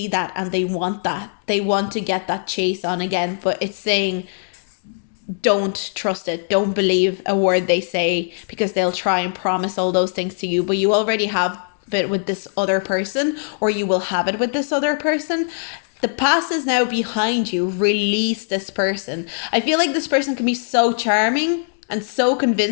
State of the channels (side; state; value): right; silent; digital silence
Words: that, and they want that. They want to get that chase on again, but it's saying, don't trust it. Don't believe a word they say, because they'll try and promise all those things to you, but you already have it with this other person, or you will have it with this other person. The past is now behind you. Release this person. I feel like this person can be so charming and so